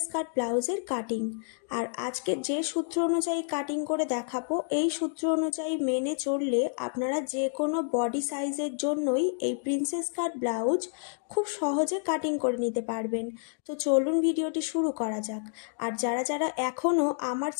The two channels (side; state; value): right; silent; digital silence